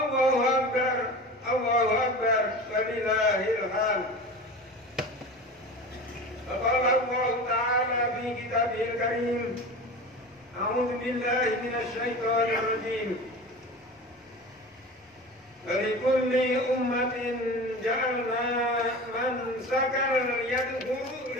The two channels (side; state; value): both; normal; correlation 0.33